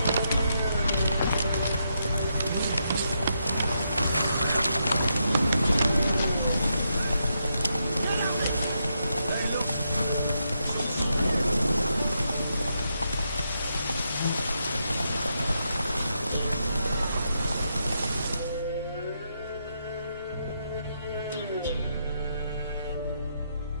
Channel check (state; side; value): inverted; both; correlation -0.81